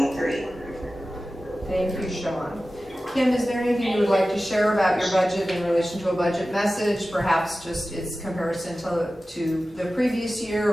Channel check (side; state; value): both; normal; correlation 0.95